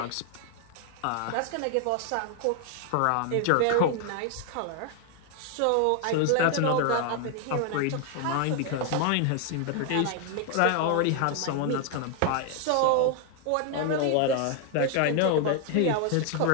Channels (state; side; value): different; both; correlation 0.00